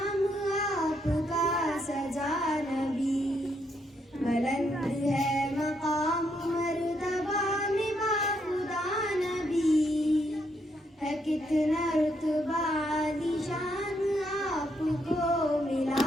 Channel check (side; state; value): both; normal; correlation 0.76